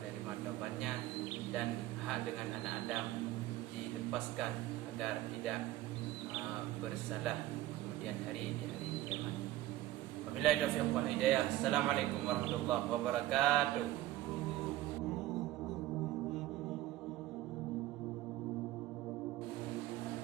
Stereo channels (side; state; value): left; quieter; 15.3 dB